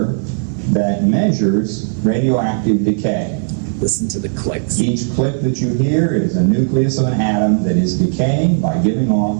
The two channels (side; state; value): left; silent; digital silence